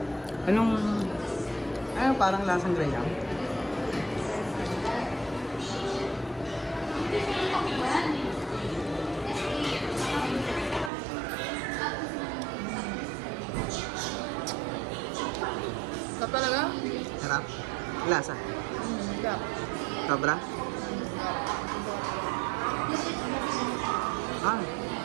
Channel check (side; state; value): left; drops out; at 10.9 s